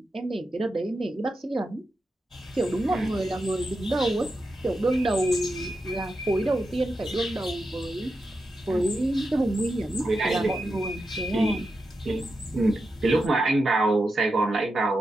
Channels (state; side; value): normal; both; correlation 0.88